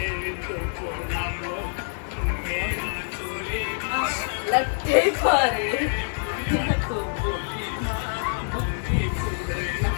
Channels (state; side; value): silent; right; digital silence